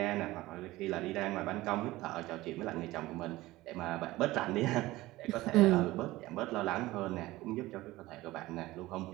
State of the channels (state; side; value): quieter; left; 18.2 dB